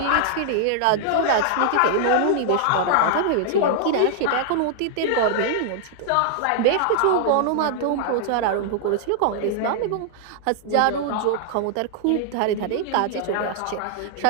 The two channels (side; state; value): both; different; correlation -0.01